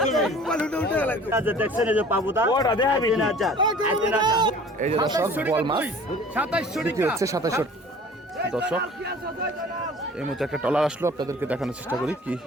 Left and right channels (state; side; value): normal; both; correlation 0.47